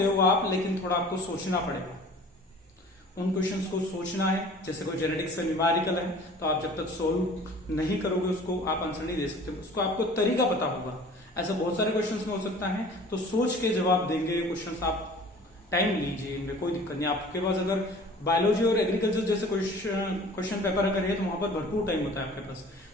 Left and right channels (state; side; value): normal; both; correlation 0.46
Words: हो आप, लेकिन थोड़ा आपको सोचना पड़ेगा। उन क्वेश्चंस को सोचना है, जैसे कोई जेनेटिक्स का न्यूमेरिकल है तो आप जब तक सोल्व नहीं करोगे उसको आप आंसर नहीं दे सकते, उसको आपको तरीका पता होगा। ऐसा बहुत सारे क्वेश्चंस में हो सकता है, तो सोच के जवाब देंगे क्वेश्चंस। आप टाइम लीजिए, इनमें कोई दिक्कत नहीं। आपके पास अगर बायोलॉजी और एग्रीकल्चर जैसे क्वेश्चन पेपर अगर है तो वहां पर भरपूर टाइम होता है आपके पास,